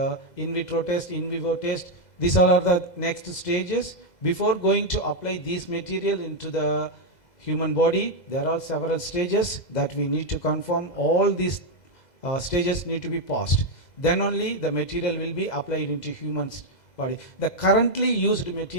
in vitro test, in vivo test. These are the next stages. Before going to apply this material into the human body, there are several stages that we need to confirm. All these stages need to be passed. Then only the material will be applied into human's body. The currently used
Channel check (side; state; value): right; late; 2.0 ms